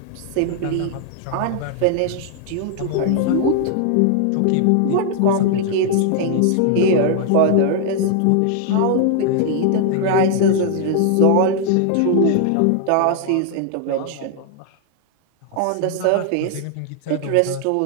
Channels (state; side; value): different; both; correlation 0.00